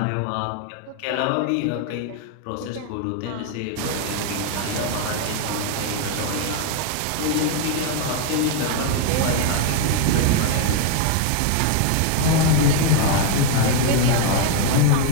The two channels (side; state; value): both; different; correlation 0.01